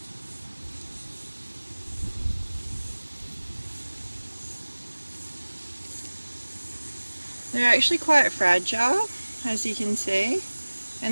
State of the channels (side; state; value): both; inverted; correlation -1.00